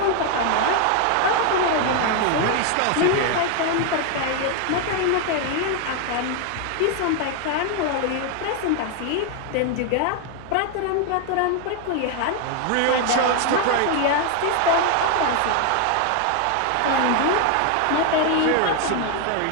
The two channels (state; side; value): different; both; correlation 0.01